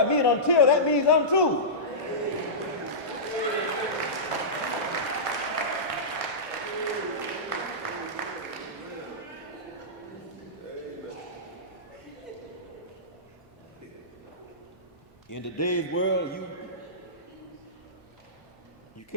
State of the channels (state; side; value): normal; both; correlation -0.18